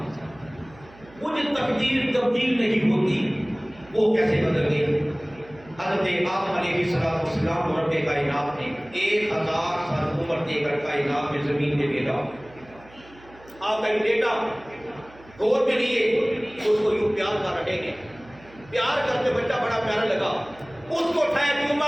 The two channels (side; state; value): right; noise; hum, 23 dB below the sound